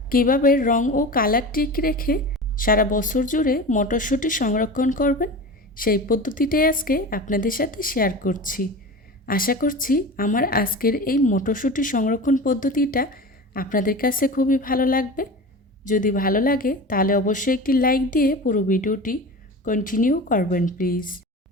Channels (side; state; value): both; normal; correlation 0.31